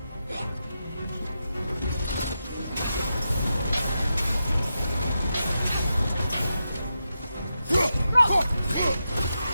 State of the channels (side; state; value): both; inverted; correlation -0.88